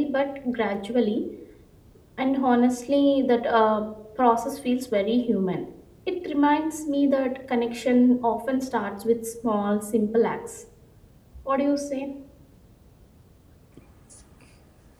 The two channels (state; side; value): identical; both; correlation 1.00